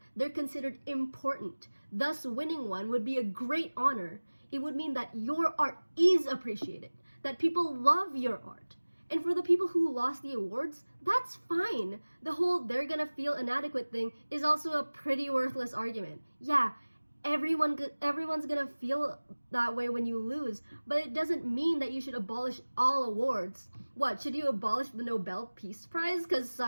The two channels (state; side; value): inverted; both; correlation -1.00